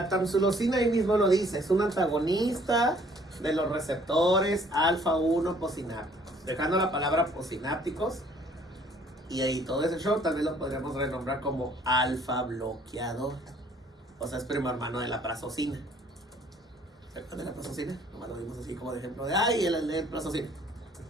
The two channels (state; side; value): normal; both; correlation 0.59